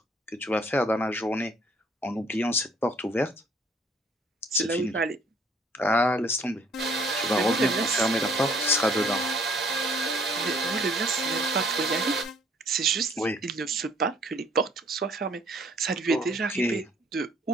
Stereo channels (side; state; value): both; normal; correlation 0.60